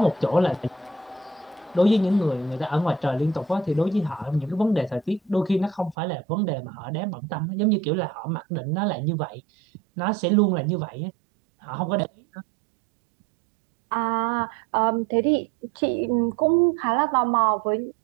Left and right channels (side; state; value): left; drops out; at 6.0 s